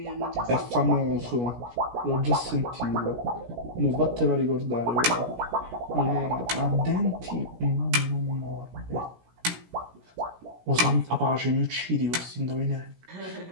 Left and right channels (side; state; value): left; late; 17 ms